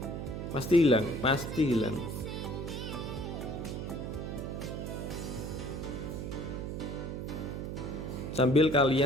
Pasti hilang, pasti hilang. Sambil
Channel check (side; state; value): right; noise; hum, 5 dB below the sound